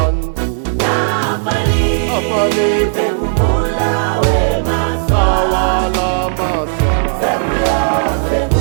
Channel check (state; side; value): silent; left; digital silence